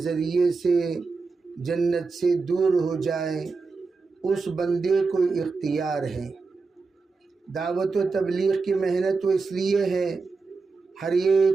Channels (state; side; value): quieter; left; 4.3 dB